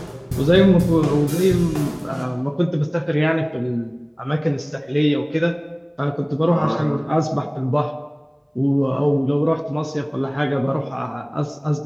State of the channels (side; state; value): both; identical; correlation 1.00